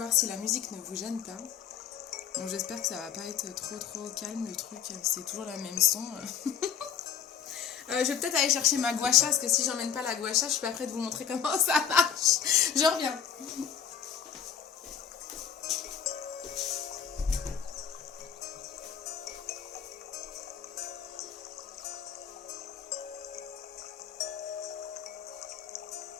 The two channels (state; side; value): quieter; right; 8.2 dB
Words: si la musique ne vous gêne pas. Bon, j'espère que ça va pas être trop calme le truc. C'est toujours la même son. Je vais peut-être aller chercher ma gua sha parce que si j'emmène pas la gua sha, je suis pas prête de vous montrer comment ça marche. Je reviens.